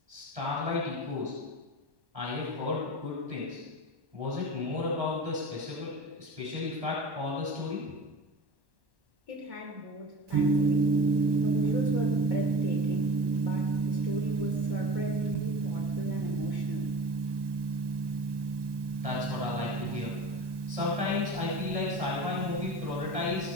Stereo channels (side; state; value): left; late; 1.1 ms